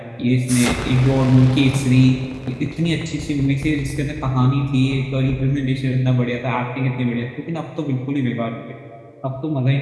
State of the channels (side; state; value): both; identical; correlation 1.00